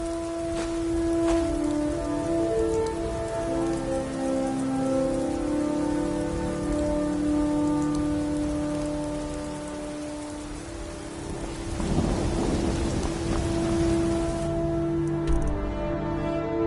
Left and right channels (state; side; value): identical; both; correlation 1.00